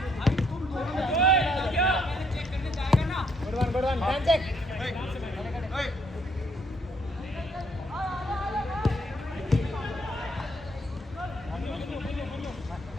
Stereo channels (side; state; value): both; normal; correlation 0.70